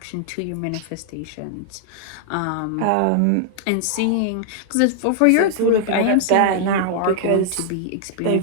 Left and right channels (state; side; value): different; both; correlation -0.01